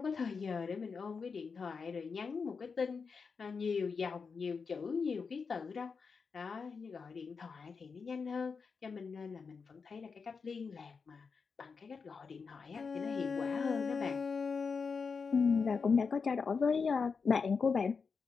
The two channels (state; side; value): quieter; right; 5.3 dB